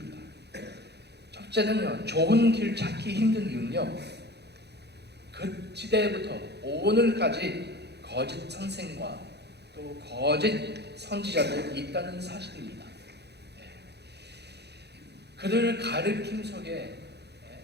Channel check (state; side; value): late; left; 0.48 ms